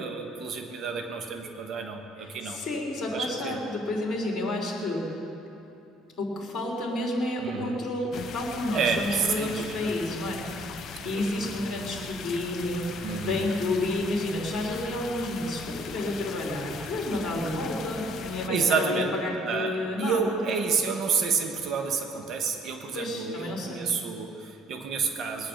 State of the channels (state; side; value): normal; both; correlation 0.61